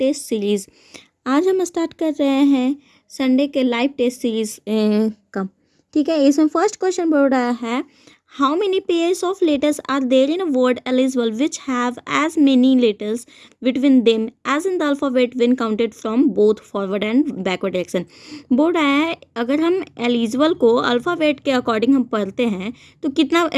series. आज हम start कर रहे हैं संडे के लाइव टेस्ट सीरीज़ का। ठीक है, इसमें फर्स्ट क्वेश्चन बोल रहा है, how many pairs of letters are there in a word eligible which have as many letters between them as in the alphabet when counted from both forward and backward direction. बोल रहा है अगर हम eligible को alphabet के according हम पढ़ते हैं तो कितना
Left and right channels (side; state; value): both; identical; correlation 1.00